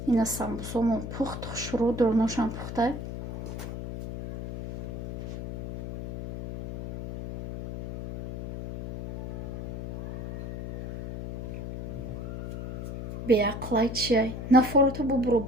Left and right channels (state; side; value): noise; left; hum, 6 dB below the sound